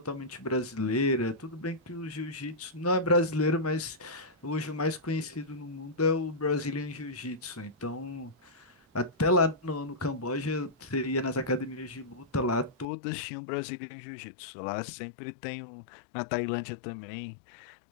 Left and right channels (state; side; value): drops out; right; at 12.9 s